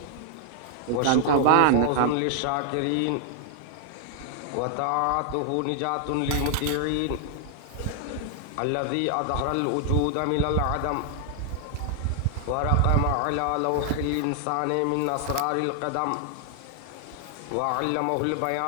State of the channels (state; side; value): different; both; correlation 0.00